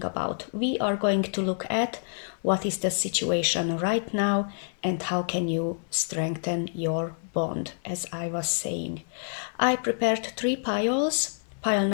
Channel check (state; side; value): silent; right; digital silence